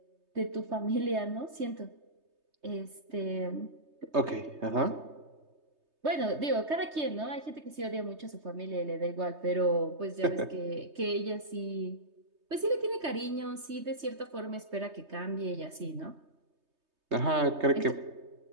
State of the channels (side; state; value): left; late; 3.2 ms